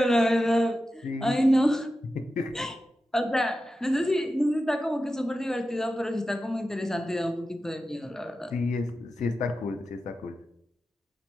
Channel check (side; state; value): both; normal; correlation 0.92